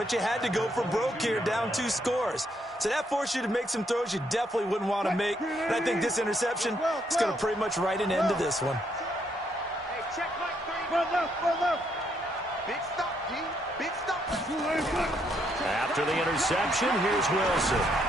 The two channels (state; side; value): normal; both; correlation 0.74